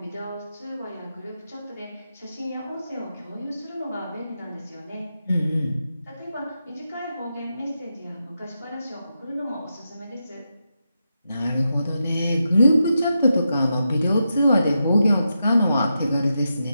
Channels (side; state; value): both; inverted; correlation -0.86